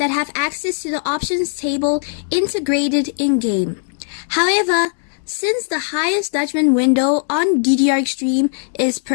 have access to the options table integrated in-game. However, since the highest judgment window on DDR Extreme is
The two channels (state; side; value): silent; right; digital silence